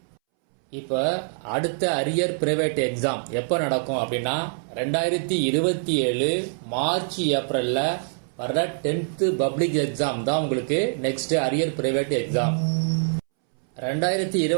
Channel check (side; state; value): left; silent; 62 dB below the other